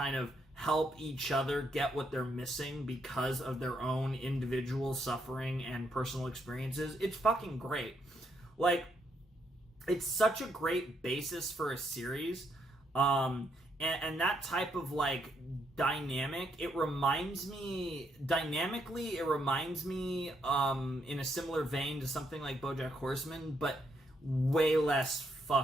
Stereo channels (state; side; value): normal; both; correlation 0.76